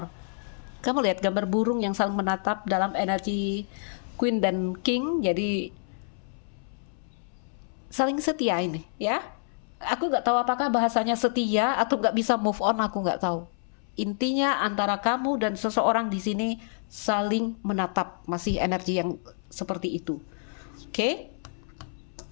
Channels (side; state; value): right; silent; 59 dB below the other